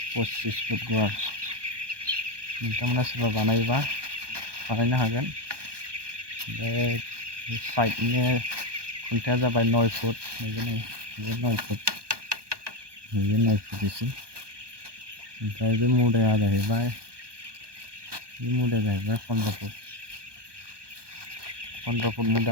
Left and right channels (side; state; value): left; late; 1.2 ms